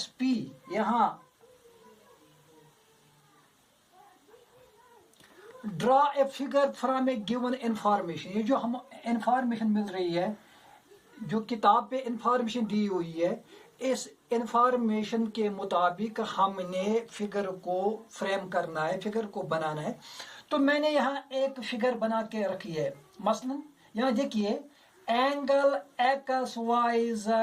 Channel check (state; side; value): identical; both; correlation 1.00